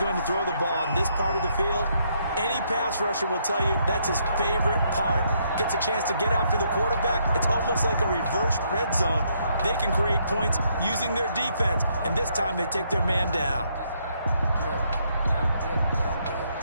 to throw the ball on this part of the field, any pass rusher will tell you that's his favorite part. Gets a chance to get after the quarterback. It's almost like a reverse red zone. They can create points using their defense, and this time they take their man down.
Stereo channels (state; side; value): inverted; both; correlation -0.73